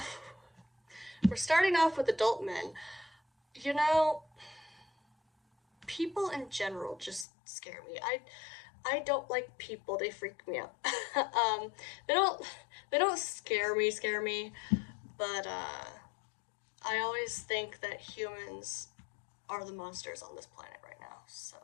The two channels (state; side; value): drops out; right; at 7.2 s